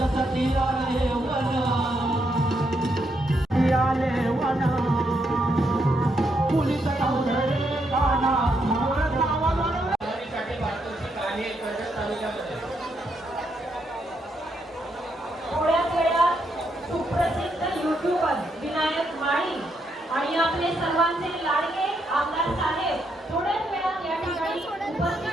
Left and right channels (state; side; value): normal; both; correlation 0.78